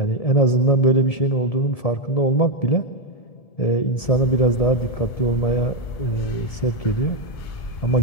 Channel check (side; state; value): right; late; 1.7 ms